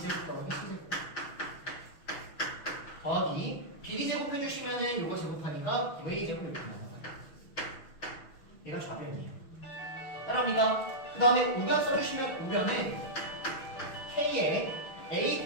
더하기 c제곱 더하기 bd 제곱 해주시면은 요거 제곱하니까 9a 제곱 이렇게 나와요. 얘가 좌변이에요. 따라옵니까? 그 다음에 우변 써주시면 우변에 k에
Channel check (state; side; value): late; right; 6.3 ms